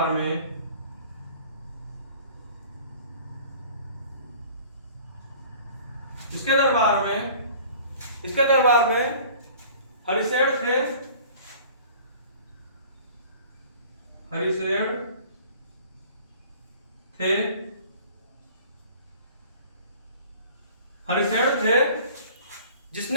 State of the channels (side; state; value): both; inverted; correlation -0.48